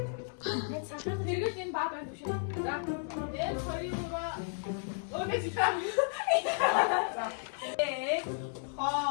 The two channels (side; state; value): right; silent; digital silence